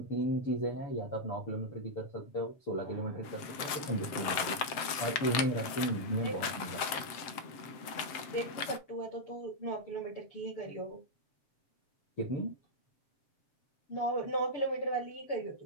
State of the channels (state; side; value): late; right; 7.6 ms